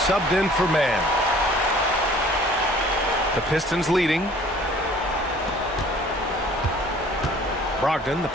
in for man. The Pistons leading. Brogdon, the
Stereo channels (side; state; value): both; normal; correlation 0.52